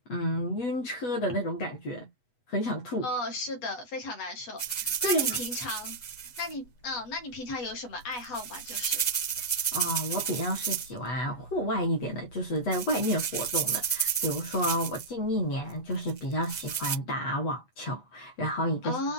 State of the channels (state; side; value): late; right; 8.1 ms